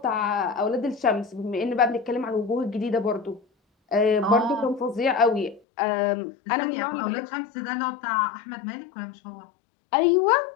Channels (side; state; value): right; drops out; at 5.6 s